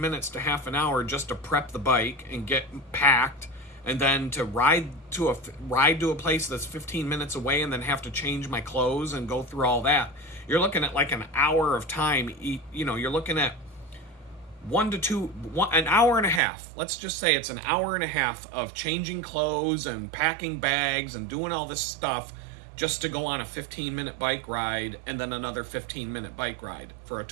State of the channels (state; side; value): drops out; left; at 16.4 s